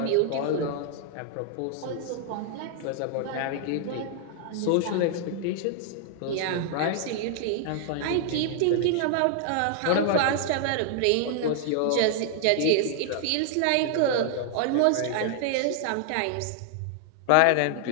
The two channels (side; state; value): both; different; correlation 0.00